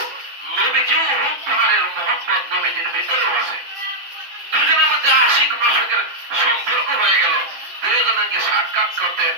নবীজিও উহুদ পাহাড়ের মহব্বত নবীজির ভিতরেও আছে। দুজনের মধ্যে আশিক মাসুকের সম্পর্ক হয়ে গেল, দুজনকে সাক্ষাৎ করতে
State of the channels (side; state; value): left; late; 7.5 ms